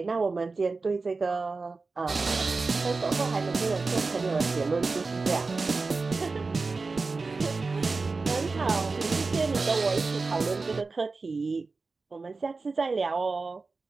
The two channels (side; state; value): left; quieter; 4.0 dB